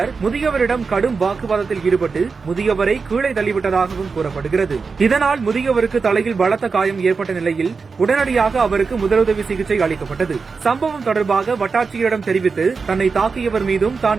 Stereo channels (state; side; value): quieter; left; 4.8 dB